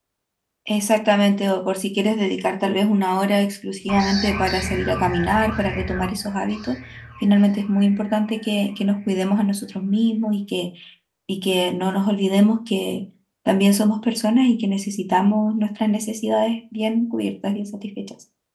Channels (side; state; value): both; identical; correlation 1.00